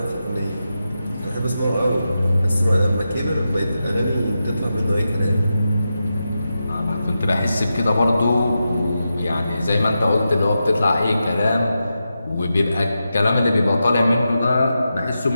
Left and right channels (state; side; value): inverted; both; correlation -0.89